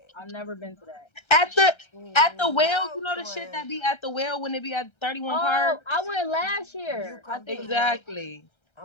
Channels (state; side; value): late; right; 1.3 ms